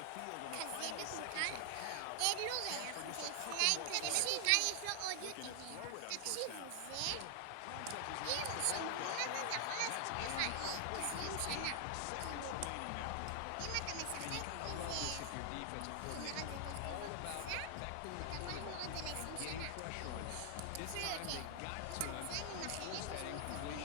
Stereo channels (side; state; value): both; different; correlation 0.00